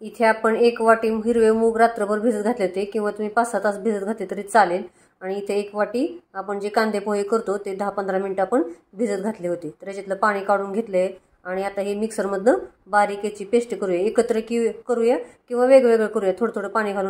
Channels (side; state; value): both; identical; correlation 1.00